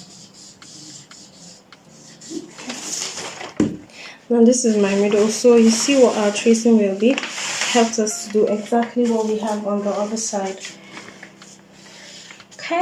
and this is my middle. So you see what our tracing will be. Helps us to do exactly what we have on the other side.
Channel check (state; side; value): identical; both; correlation 1.00